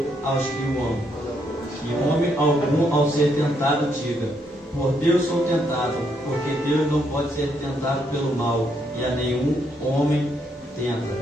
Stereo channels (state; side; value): normal; both; correlation 0.75